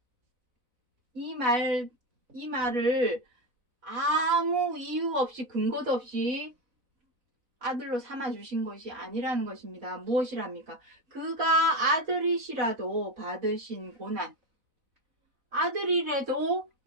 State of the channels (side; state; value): left; late; 4.0 ms